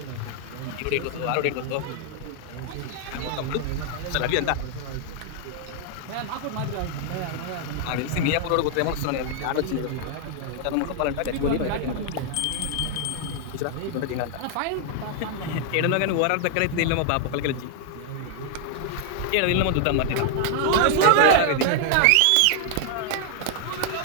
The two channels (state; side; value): different; both; correlation 0.00